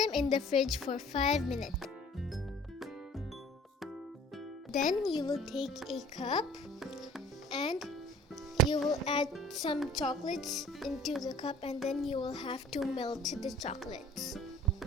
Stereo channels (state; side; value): normal; both; correlation 0.51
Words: in the fridge for 5 minutes. Then you will take a cup and you will add some chocolates into the cup, and then you will have to melt the chocolates.